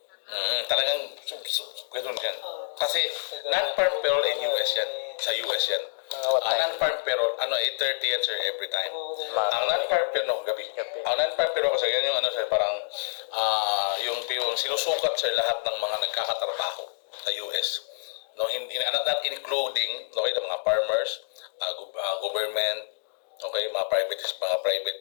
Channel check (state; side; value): silent; right; digital silence